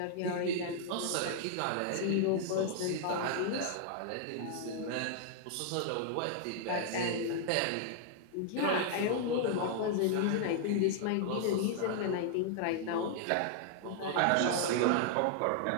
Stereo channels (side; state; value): both; different; correlation 0.00